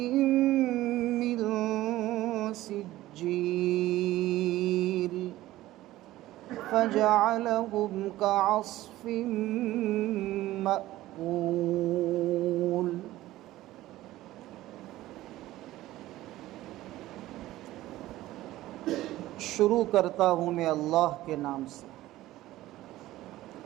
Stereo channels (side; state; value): left; quieter; 15.9 dB